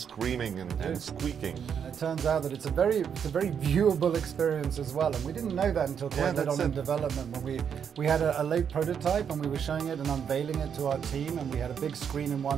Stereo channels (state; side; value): quieter; left; 7.6 dB